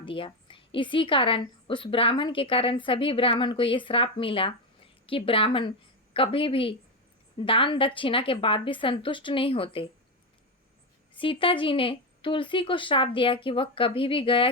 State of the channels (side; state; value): both; normal; correlation 0.11